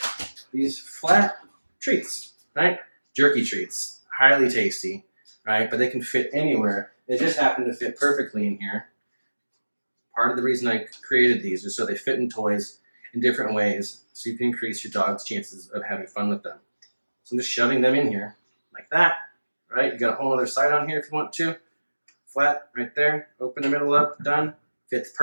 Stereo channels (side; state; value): both; inverted; correlation -1.00